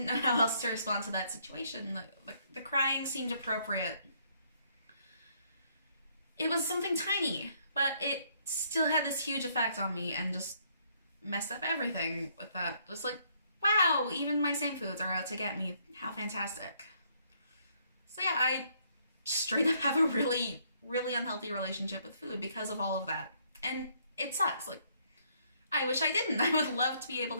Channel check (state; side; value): inverted; both; correlation -0.68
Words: know how else to respond to that situation. The crying seemed appropriate. It was something tiny, but it still had this huge effect on me and just messed up everything with that. Just like, wow, even my same foods are out to get me. How fantastic. So yeah, I straight up have a really unhealthy relationship with food because of all of that. And it sucks. Like, I wish I didn't. I would love to be able